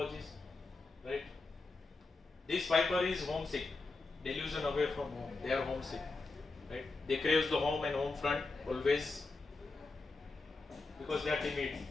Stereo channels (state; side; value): quieter; right; 3.6 dB